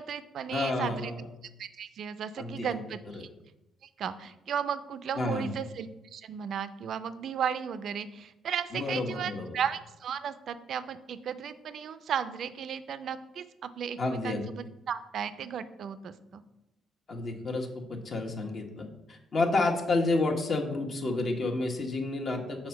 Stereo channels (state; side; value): normal; both; correlation 0.72